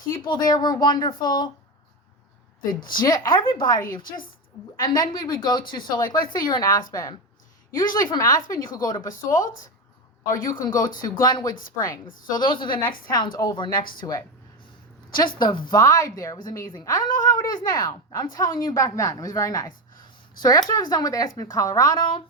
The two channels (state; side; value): normal; both; correlation 0.15